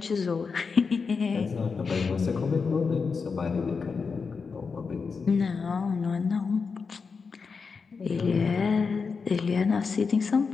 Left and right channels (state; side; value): quieter; right; 5.1 dB